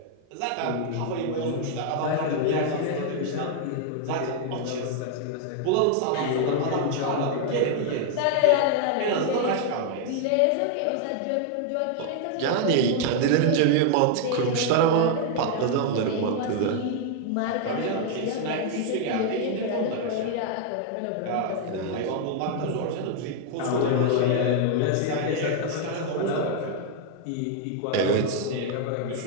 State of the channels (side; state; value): both; different; correlation 0.00